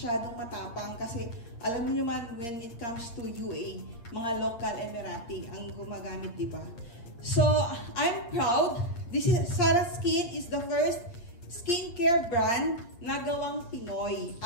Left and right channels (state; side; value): late; right; 8.5 ms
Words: matapang kasi alam niyo man when it comes to UAE, mga local Emirati ang gumagamit, di ba? So, I'm proud. Sarah Skin is the first skincare brand na gawang Pinoy.